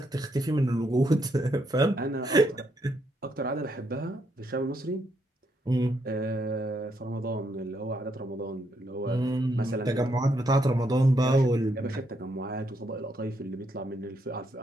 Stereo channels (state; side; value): normal; both; correlation 0.76